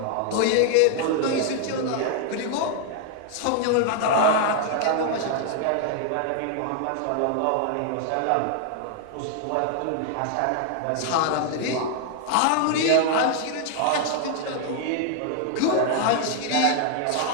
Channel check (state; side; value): different; both; correlation 0.00